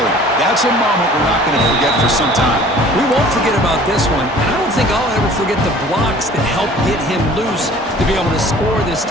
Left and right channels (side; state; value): both; normal; correlation 0.49